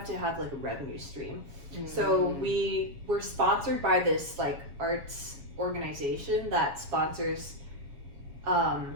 to have like a revenue stream. So we were sponsored by this like arts organization that sponsors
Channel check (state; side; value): late; left; 7.2 ms